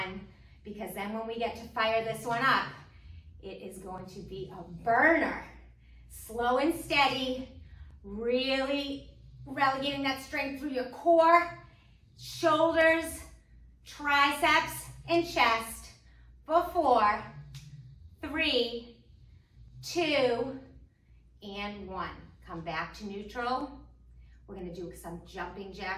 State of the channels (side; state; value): both; identical; correlation 1.00